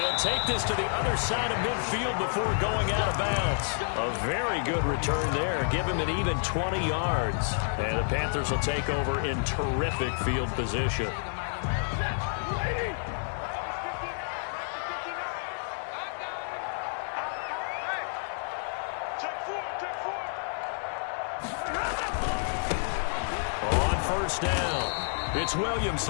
take this to the other side of midfield before going out of bounds. A very good return there. Give him an even 20 yards. And the Panthers will take over in terrific field position. On first down, it's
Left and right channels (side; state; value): right; silent; digital silence